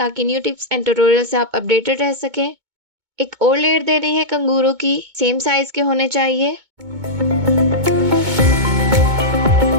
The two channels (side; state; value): left; late; 2.2 ms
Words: न्यू टिप्स एंड ट्यूटोरियल से आप अपडेटेड रह सकें। एक और लेयर दे रही है कंगूरों की, सेम साइज के होने चाहिए।